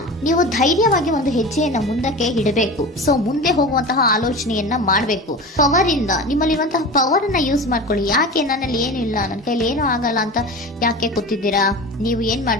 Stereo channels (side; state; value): both; normal; correlation 0.31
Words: ನೀವು ಧೈರ್ಯವಾಗಿ ಒಂದು ಹೆಜ್ಜೆಯನ್ನ ಮುಂದಕ್ಕೆ ಇಡಬೇಕು. ಸೊ ಮುಂದೆ ಹೋಗುವಂತಹ ಆಲೋಚನೆಯನ್ನ ಮಾಡಬೇಕು. ಪವರ್ ಇಂದ, ನಿಮ್ಮಲ್ಲಿರುವಂತಹ ಪವರ್ ಅನ್ನ ಯೂಸ್ ಮಾಡ್ಕೊಳ್ಳಿ. ಯಾಕೆ ನನ್ನಲ್ಲಿ ಏನು ಇಲ್ಲ, ನನ್ನ ಕೈಲಿ ಏನೂ ಆಗಲ್ಲ ಅಂತ ಯಾಕೆ ಕೂತಿದ್ದೀರಾ? ನೀವು ಏನ್